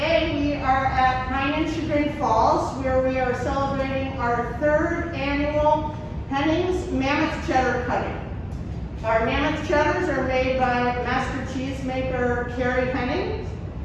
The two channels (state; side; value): identical; both; correlation 1.00